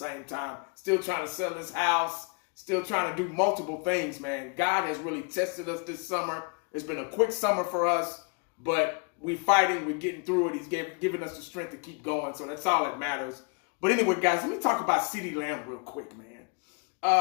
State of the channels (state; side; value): quieter; right; 34.6 dB